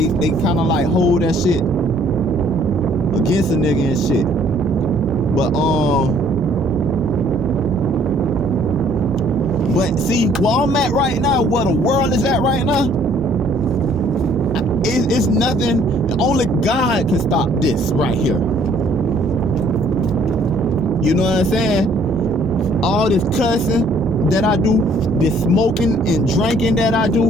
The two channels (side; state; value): both; normal; correlation 0.60